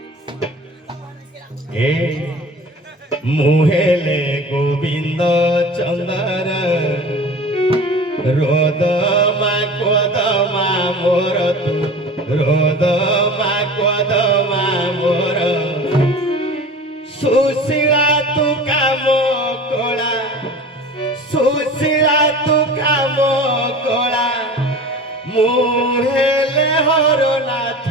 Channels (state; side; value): normal; both; correlation 0.38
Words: এ মুহেলে গোবিন্দ চন্দর রোদমা কোদমা মোর তু রোদমা কোদমা মোর সুশীলা তু কাম কলা সুশীলা তু কাম কলা মুহেলে হরনাথ